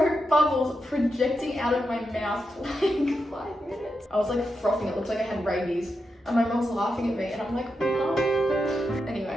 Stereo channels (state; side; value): normal; both; correlation 0.87